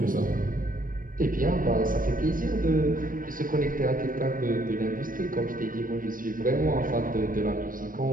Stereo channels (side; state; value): left; late; 0.40 ms